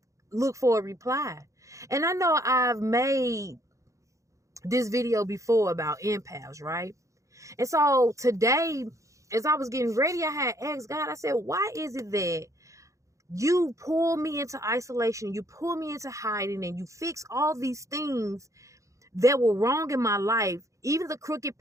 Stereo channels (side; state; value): left; late; 0.15 ms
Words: look for a reply. And I know I've made this video before about empaths, right? And so today, as I was getting ready, I had asked God, I said, why is it that you pull me into isolation, you pull me into hiding, and you fix all these things that were wrong in my life, even the crooked